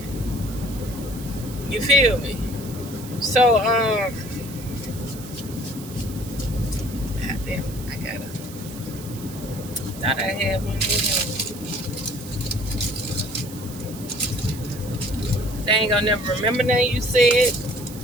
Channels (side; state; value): right; noise; hiss, 15 dB below the sound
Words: You feel me? So, goddamn, thought I had one here. They ain't gonna never remember nothing you said.